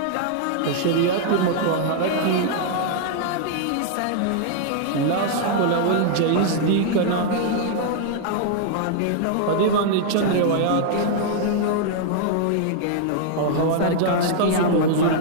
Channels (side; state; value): both; different; correlation -0.01